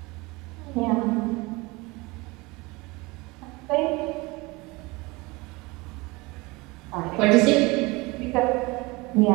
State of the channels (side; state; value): left; quieter; 24.1 dB